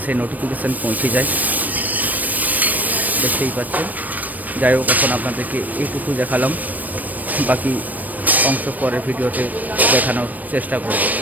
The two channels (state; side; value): late; left; 0.081 ms